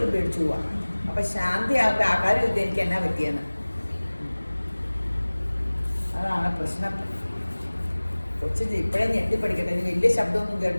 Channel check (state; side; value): inverted; both; correlation -1.00